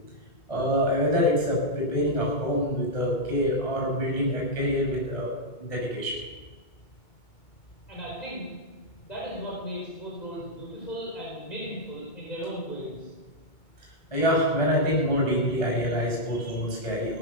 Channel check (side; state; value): right; late; 2.2 ms